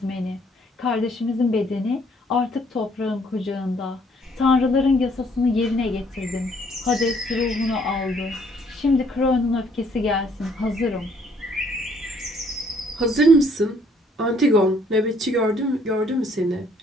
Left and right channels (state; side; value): normal; both; correlation 0.64